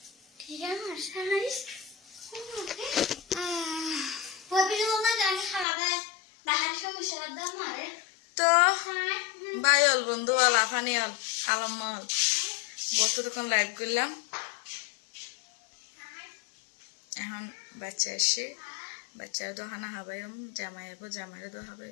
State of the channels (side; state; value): right; drops out; at 5.7 s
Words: ঠিক আছে ওই পিছনে না জানি খালাবে বাহার সমস্যা দাম মারে তো বাই হল বন্ধু হল আফানি হল আলম হল বসে তখন লাইভ করলাম এখন বাচ্চা এসে বাচ্চার দোহানা হাবাইম জামাই হবো জামাইরে দো